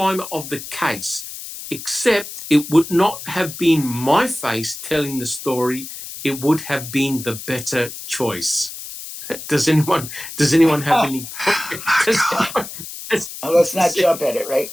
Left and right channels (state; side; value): noise; left; hiss, 11 dB below the sound